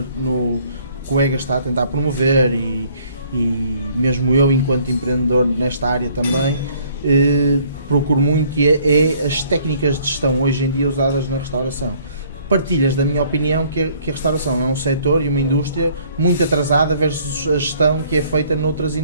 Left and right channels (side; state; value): both; inverted; correlation -0.60